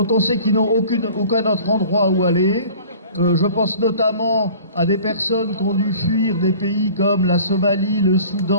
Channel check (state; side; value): inverted; both; correlation -0.46